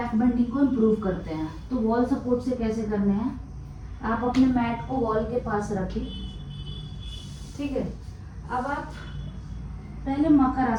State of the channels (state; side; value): identical; both; correlation 1.00